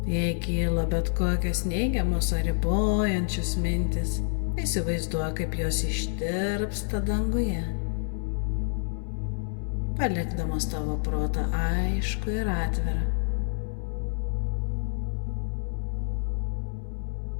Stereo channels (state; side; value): silent; right; 59 dB below the other